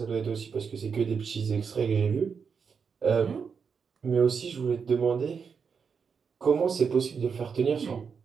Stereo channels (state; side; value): quieter; left; 6.1 dB